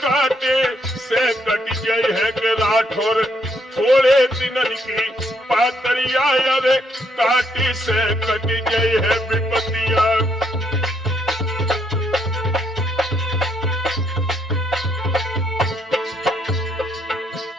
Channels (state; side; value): normal; both; correlation 0.73